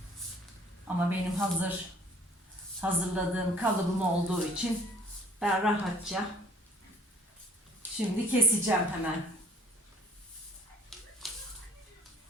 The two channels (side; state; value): both; normal; correlation 0.55